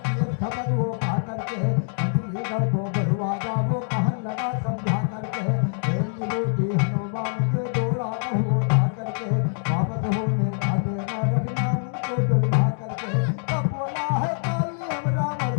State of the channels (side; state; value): right; silent; digital silence